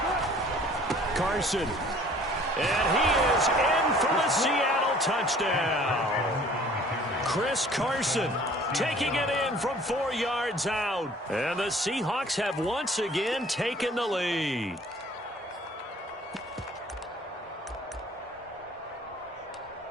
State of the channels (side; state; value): both; normal; correlation 0.52